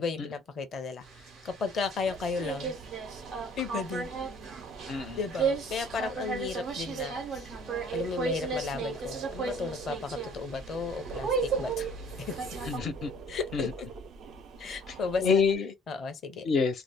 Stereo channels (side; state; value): both; normal; correlation 0.56